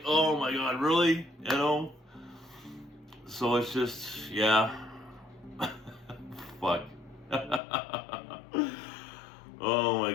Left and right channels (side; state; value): right; drops out; at 7.6 s